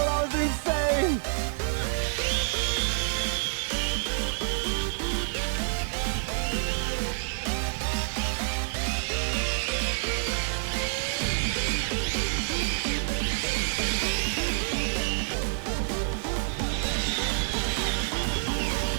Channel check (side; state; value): left; silent; 59 dB below the other